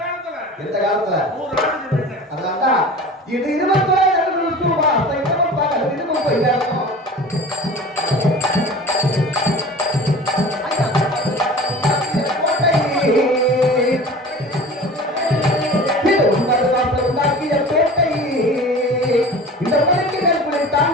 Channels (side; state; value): both; normal; correlation 0.39